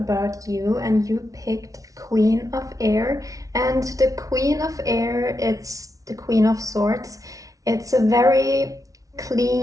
you, and you picked Queen of Air. And the Queen of Air, it's the Queen of Swords. It's a very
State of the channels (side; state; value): left; late; 0.17 ms